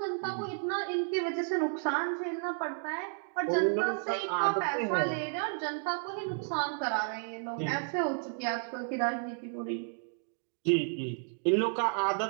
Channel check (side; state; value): left; silent; 56 dB below the other